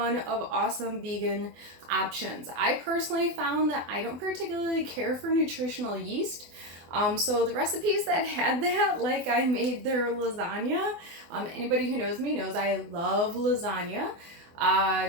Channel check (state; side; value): late; left; 24 ms